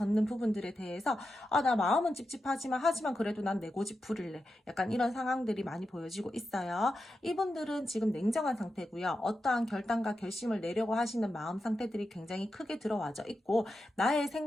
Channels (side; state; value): both; normal; correlation 0.89